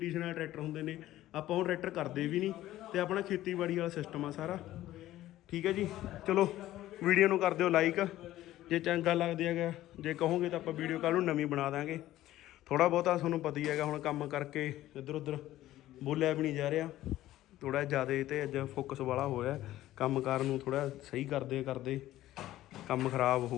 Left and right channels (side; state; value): right; quieter; 14.6 dB